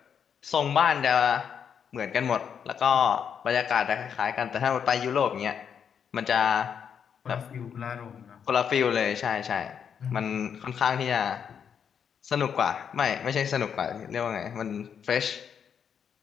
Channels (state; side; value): quieter; right; 7.6 dB